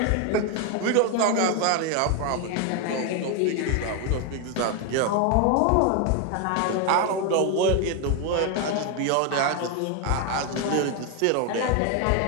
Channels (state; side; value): different; both; correlation 0.01